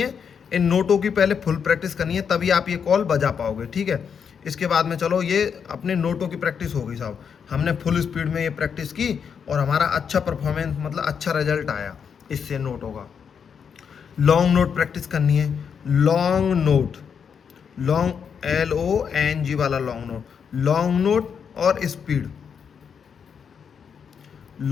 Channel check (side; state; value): right; quieter; 6.9 dB